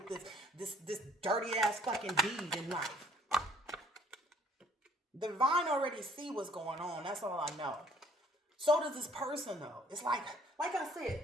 this dirty ass fucking deed in life. The divine already see what's going on. That's all I know. So does this person know. It's like I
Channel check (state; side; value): normal; both; correlation 0.60